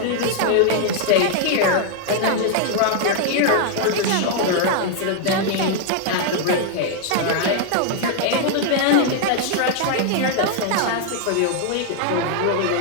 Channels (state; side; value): different; both; correlation 0.00